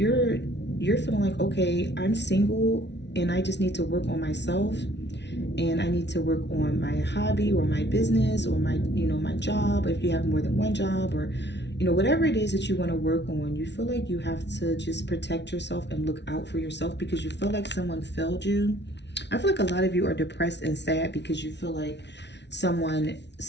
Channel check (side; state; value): right; late; 0.50 ms